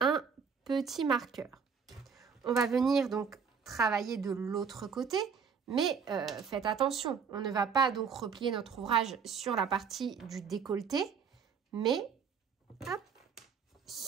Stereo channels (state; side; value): quieter; left; 6.3 dB